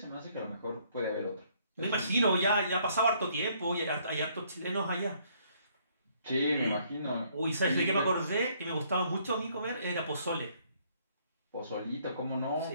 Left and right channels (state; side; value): inverted; both; correlation -0.66